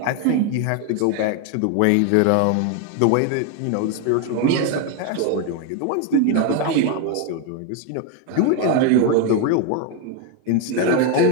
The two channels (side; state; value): both; different; correlation 0.01